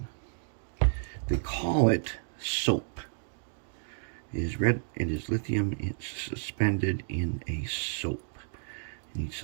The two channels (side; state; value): left; silent; digital silence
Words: they call it soap. It is red, it is lithium, it's suspended in a soap. And